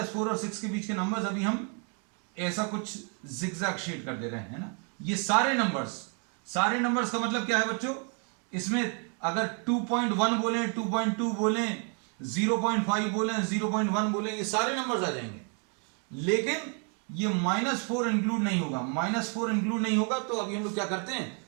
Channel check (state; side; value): quieter; left; 39.0 dB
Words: और 6 के बीच के नंबर्स अभी हम ऐसा कुछ जिगजैग शेड कर दे रहे हैं, है ना। ये सारे नंबर्स का मतलब क्या है बच्चों, इसमें अगर 2.1 बोले, 2.2 बोले, 0.5 बोले, 0.1 बोले, ये सारे नंबर्स आ जाएंगे। लेकिन ये -4 इंक्लूड नहीं होगा। -4 इंक्लूड नहीं होगा तो अभी हम लोग क्या करते हैं,